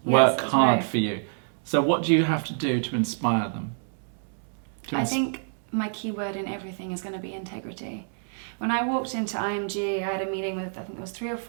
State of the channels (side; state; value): left; silent; digital silence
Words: work that's hard right. for you. So what do you have to do to inspire them? I think my key word in everything is going to be integrity. When I walked into IMG, I had a meeting with, I think there was 3 or